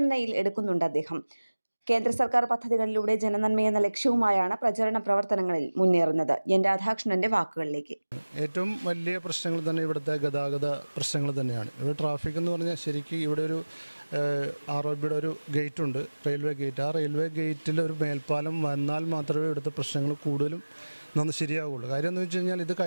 എടുക്കുന്നുണ്ട് അദ്ദേഹം. കേന്ദ്ര സർക്കാർ പദ്ധതികളിലൂടെ ജനനന്മയെന്ന ലക്ഷ്യവുമായാണ് പ്രചരണ പ്രവർത്തനങ്ങളിൽ മുന്നേറുന്നത്. N. രാധാകൃഷ്ണന്റെ വാക്കുകളിലേക്ക്. ഏറ്റവും വലിയ പ്രശ്നങ്ങൾ തന്നെ ഇവിടുത്തെ ഗതാഗത പ്രശ്നങ്ങൾ തന്നെയാണ്. ഇവിടെ ട്രാഫിക് എന്ന് പറഞ്ഞാൽ ശരിക്കും ഇവിടെ ഒരു ROB ഒരു ഗേറ്റ് ഉണ്ട്, റെയിൽവേ ഗേറ്റ്. ആ റെയിൽവേ ഗേറ്റിൽ ഒരു മേൽപ്പാലം വന്നാൽ മാത്രമേ ഇവിടുത്തെ പ്രശ്നങ്ങൾ കൂടുതലും ശരിയാവുള്ളൂ. കാര്യം എന്ന് വെച്ച് കഴിഞ്ഞാൽ ഇത്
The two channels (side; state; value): both; inverted; correlation -1.00